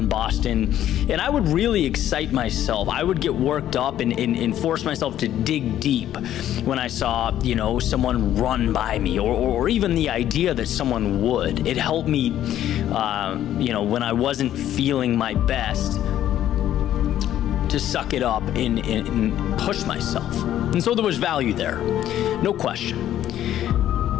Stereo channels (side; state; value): right; quieter; 11.8 dB